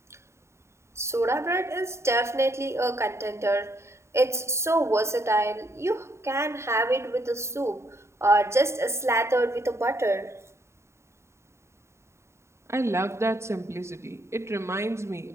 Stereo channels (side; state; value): left; late; 0.13 ms